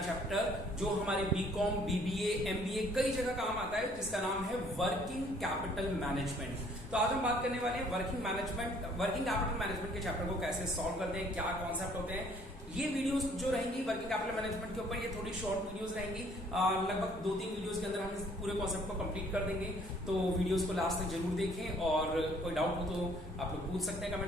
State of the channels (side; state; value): both; normal; correlation 0.60